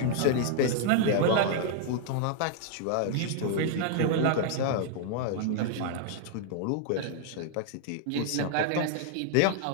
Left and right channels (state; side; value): different; both; correlation 0.00